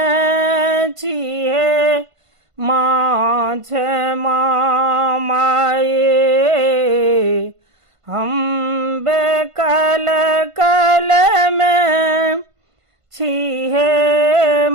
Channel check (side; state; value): left; late; 1.5 ms